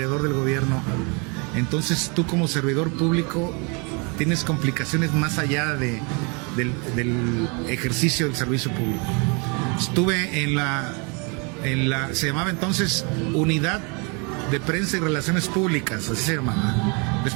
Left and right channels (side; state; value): left; quieter; 32.5 dB